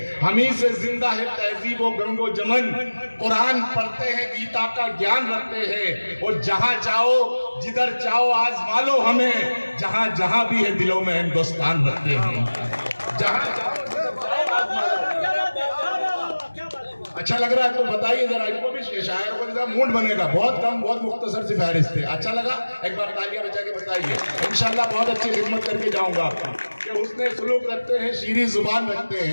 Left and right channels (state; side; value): inverted; both; correlation -1.00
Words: ہمیں سے زندہ ہے تہذیب و گنگ و جمن، قرآن پڑھتے ہیں، گیتا کا گیان رکھتے ہیں، اور جہاں چاہو جدھر چاہو آزما لو ہمیں، جہاں جہاں بھی ہے دلوں میں ہندوستان رکھتے ہیں۔ جہاں چاہو جدھر چاہو آزما لو۔ اچھا لگ رہا ہے تو بتائیے ذرا، ان کو بھی شاعر کو ذرا موڈ بنے گا۔ بہت کم، بہت مختصر سی فہرست ہے۔ اچھا لگا؟ ایک بار تالیاں بجا کے بتائیے۔ انشاءاللہ بہت اچھی خدمت کر کے جاؤں گا کہ حسن سلوک رکھتے ہیں، شیریں زبان رکھتے